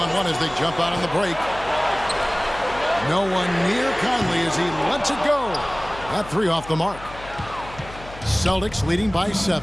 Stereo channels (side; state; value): left; noise; hum, 16 dB below the sound